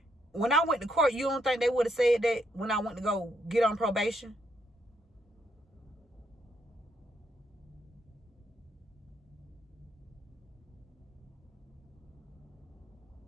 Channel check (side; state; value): both; normal; correlation 0.75